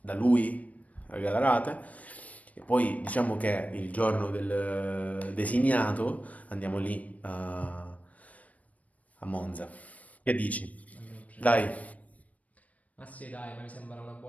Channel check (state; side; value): late; right; 0.069 ms